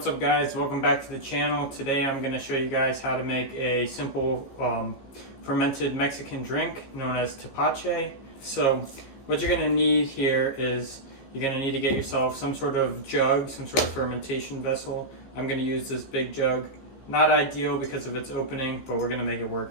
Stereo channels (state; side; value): late; right; 15 ms